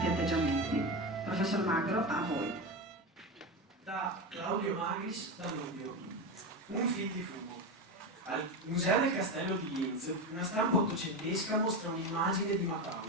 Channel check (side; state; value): both; normal; correlation 0.18